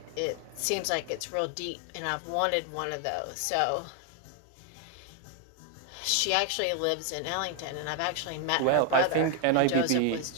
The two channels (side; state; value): both; different; correlation 0.01